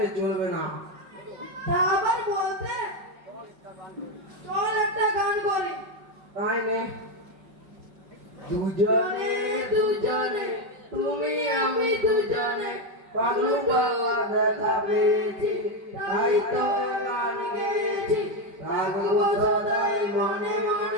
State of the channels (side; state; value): left; late; 5.3 ms